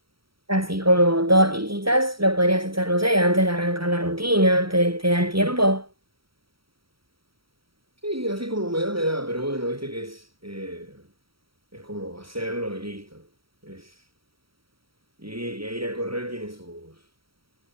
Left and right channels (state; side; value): late; left; 0.75 ms